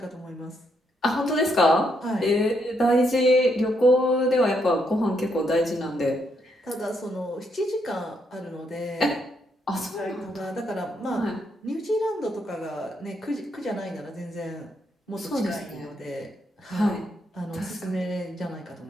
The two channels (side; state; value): both; normal; correlation 0.76